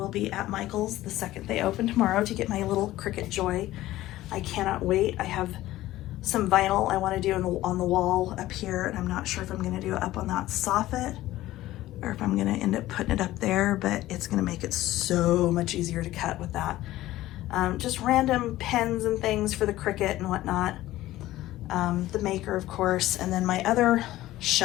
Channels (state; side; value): quieter; right; 15.7 dB